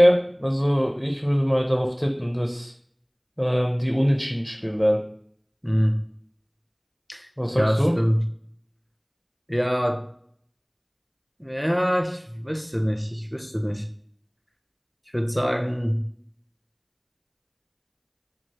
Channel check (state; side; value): identical; both; correlation 1.00